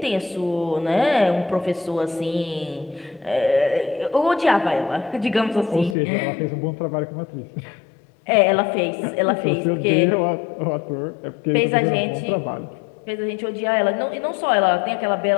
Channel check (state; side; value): drops out; right; at 6.0 s